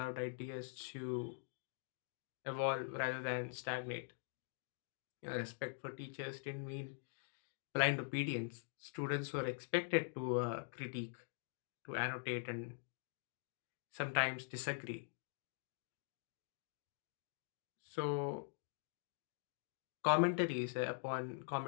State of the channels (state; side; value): silent; right; digital silence